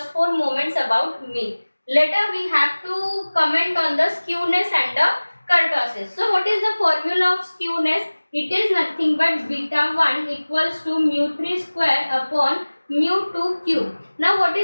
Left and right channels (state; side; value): inverted; both; correlation -1.00